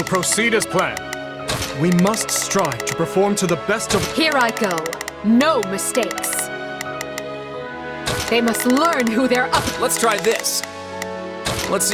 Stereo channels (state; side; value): identical; both; correlation 1.00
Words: proceed as planned. We must strive to perform to the best of... Here I go. No mistakes. They must learn who they're up... Let's try this. Let's